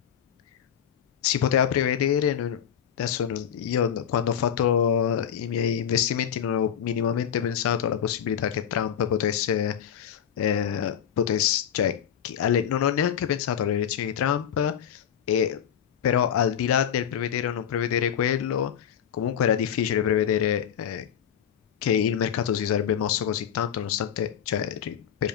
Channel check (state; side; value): quieter; right; 8.8 dB